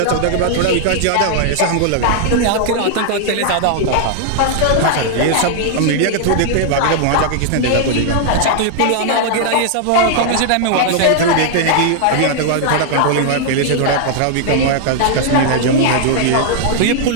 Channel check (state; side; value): different; both; correlation -0.01